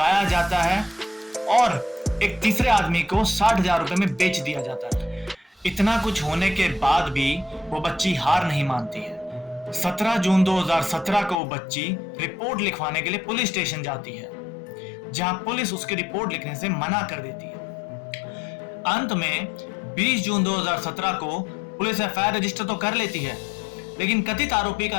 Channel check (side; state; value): right; drops out; at 11.4 s